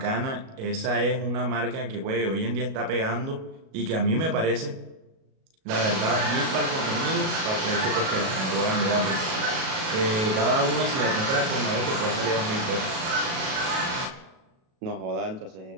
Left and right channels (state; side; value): late; left; 37 ms